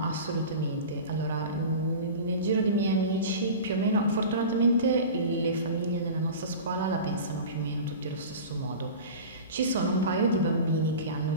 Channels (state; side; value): inverted; both; correlation -0.33